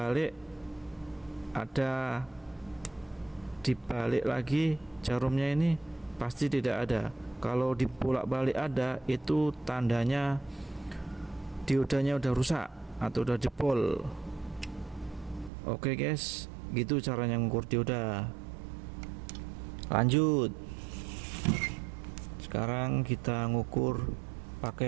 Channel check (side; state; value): left; drops out; at 15.5 s